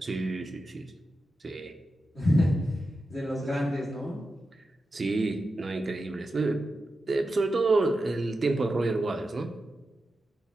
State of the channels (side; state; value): both; normal; correlation 0.90